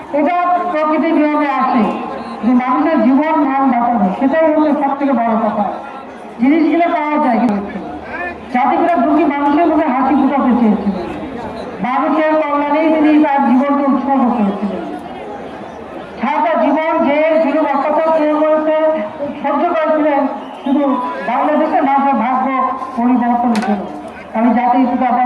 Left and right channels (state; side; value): identical; both; correlation 1.00